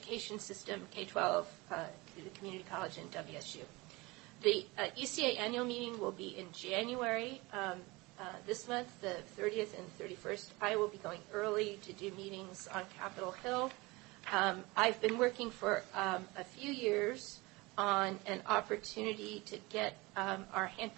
system, K-12, the community college, and WSU. The ECA annual meeting will be in January this month, the 30th and 31st. I will be going early to do meetings on Capitol Hill. I've been working for a few years on an opportunity to get our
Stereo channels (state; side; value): quieter; left; 23.3 dB